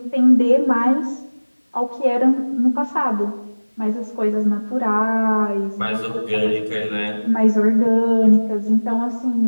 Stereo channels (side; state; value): both; inverted; correlation -1.00